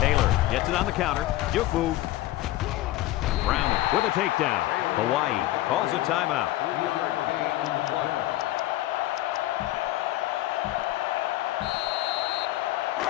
gets it on the counter. Juke move. Brown with a takedown. Hawaii calls a timeout.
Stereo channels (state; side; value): quieter; right; 15.9 dB